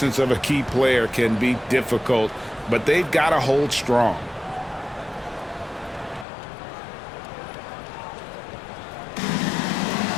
of a key player can be difficult, but they've got to hold strong.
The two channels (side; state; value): right; drops out; at 6.2 s